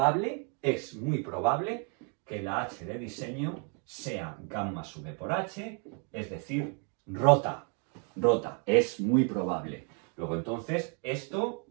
que la h de diseño sea gamma sub b por h, es decir, rota. Rota, es muy probable. Luego entonces, esto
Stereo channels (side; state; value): left; quieter; 39.0 dB